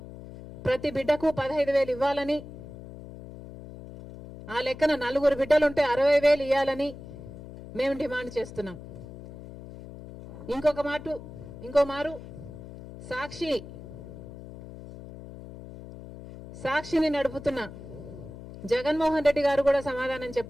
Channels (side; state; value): left; noise; hum, 14 dB below the sound